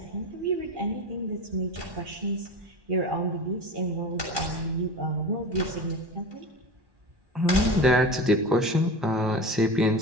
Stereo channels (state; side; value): late; left; 1.1 ms